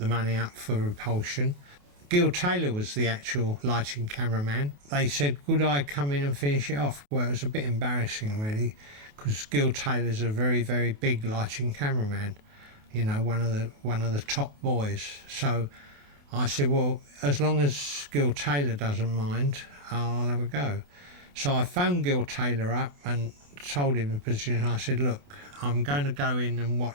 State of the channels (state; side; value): late; left; 28 ms